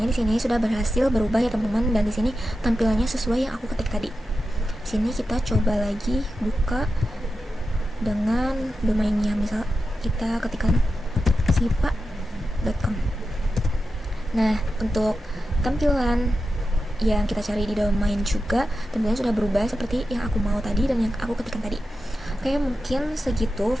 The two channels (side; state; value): both; normal; correlation 0.91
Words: di sini sudah berhasil berubah ya, teman-teman, dan di sini tampilannya sesuai yang aku ketik tadi. Di sini kita coba lagi buka dengan domainnya, misal kita ketikkan sipa.com. Nah, untuk tampilan yang kita cari di domain juga tentunya sudah berubah seperti yang aku mau tadi dan yang aku ketikkan tadi. Oke, mungkin segitu